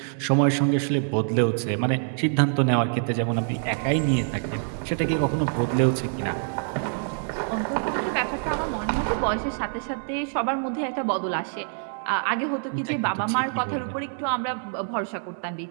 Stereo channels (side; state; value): left; silent; 61 dB below the other